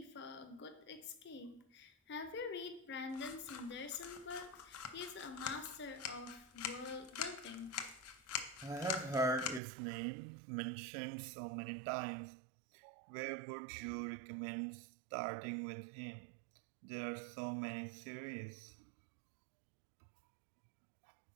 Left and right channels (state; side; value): drops out; left; at 9.6 s